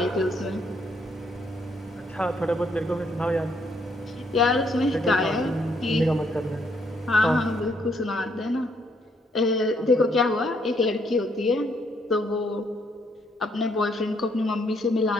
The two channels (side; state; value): both; normal; correlation 0.71